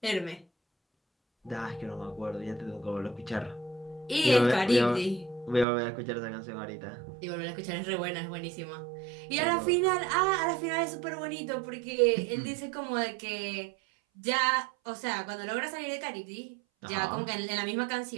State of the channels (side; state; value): left; drops out; at 5.7 s